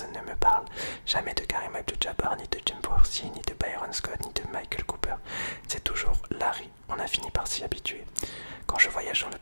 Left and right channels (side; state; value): both; inverted; correlation -1.00